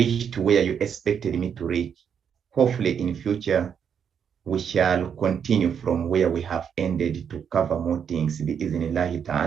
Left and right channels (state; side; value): quieter; left; 7.6 dB